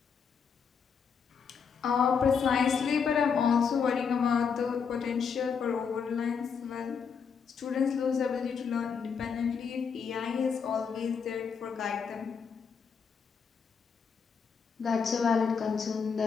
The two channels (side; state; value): right; quieter; 6.3 dB